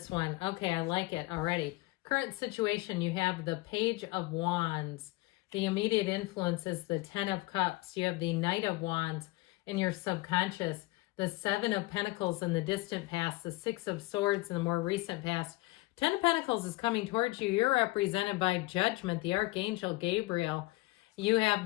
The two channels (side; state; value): right; quieter; 20.9 dB